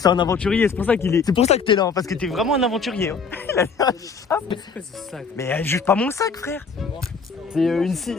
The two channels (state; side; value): quieter; right; 5.2 dB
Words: un aventurier, c'est pour ça que t'es là, parce que t'es vraiment un aventurier. C'est quoi ce sac? Mais juge pas mon sac frère. C'est